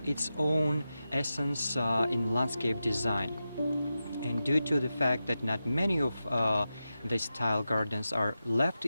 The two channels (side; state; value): both; inverted; correlation -0.91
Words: own essence in landscape design. And due to the fact that not many of these style gardens are left